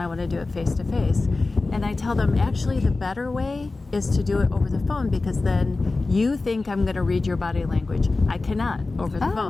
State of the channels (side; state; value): right; quieter; 3.5 dB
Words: want to do it face to face. And I tell them, actually, the better way is to do it over the phone, because then you think I'm going to read your body language. I cannot over the